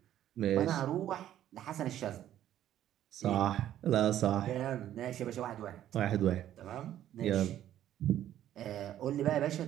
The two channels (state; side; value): quieter; left; 11.8 dB